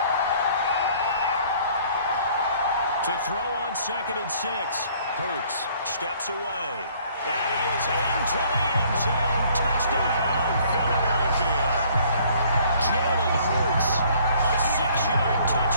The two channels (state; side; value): inverted; both; correlation -0.59